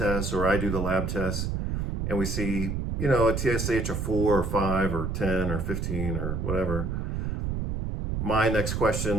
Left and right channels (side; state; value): right; noise; rumble, 2 dB below the sound